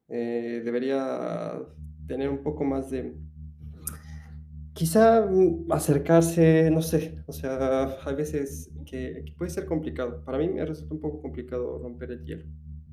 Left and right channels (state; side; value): identical; both; correlation 1.00